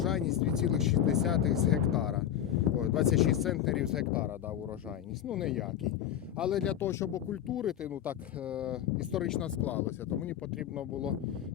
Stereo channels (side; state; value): right; quieter; 10.7 dB